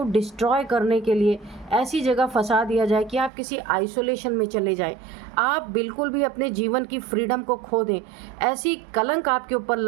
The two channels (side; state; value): left; drops out; at 3.3 s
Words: डिस्ट्रॉय करने के लिए ऐसी जगह फंसा दिया जाए कि आप किसी आइसोलेशन में चले जाएं, आप बिल्कुल भी अपने जीवन की फ्रीडम को खो दें। ऐसी कलंक आपके ऊपर